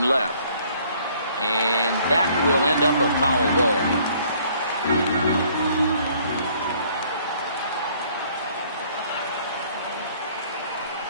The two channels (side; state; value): both; inverted; correlation -0.60